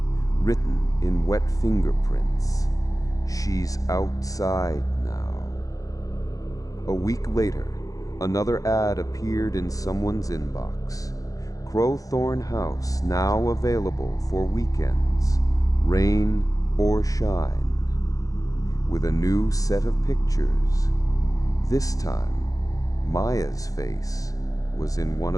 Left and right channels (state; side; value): late; right; 0.17 ms